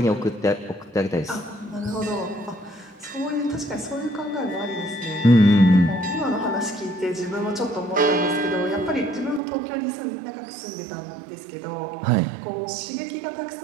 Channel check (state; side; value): drops out; left; at 9.4 s